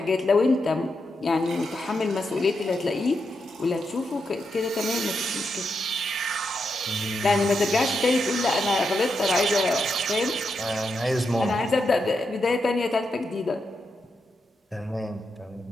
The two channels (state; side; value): normal; both; correlation 0.84